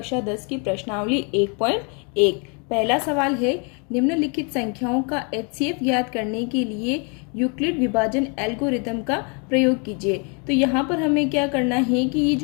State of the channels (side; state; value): right; quieter; 35.6 dB